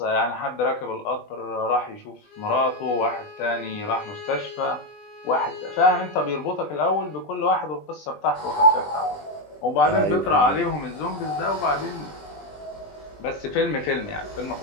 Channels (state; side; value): late; right; 20 ms